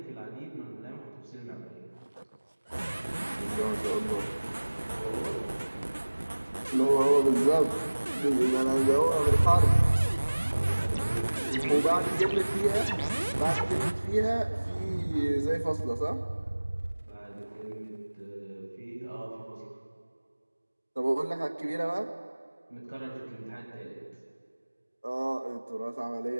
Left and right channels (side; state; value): both; inverted; correlation -1.00